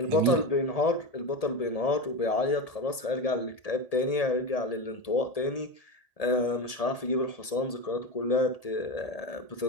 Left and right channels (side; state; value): right; late; 1.8 ms